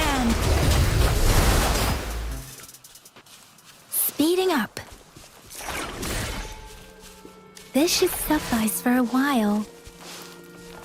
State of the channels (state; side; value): identical; both; correlation 1.00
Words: Speeding up. This should suffice for a while.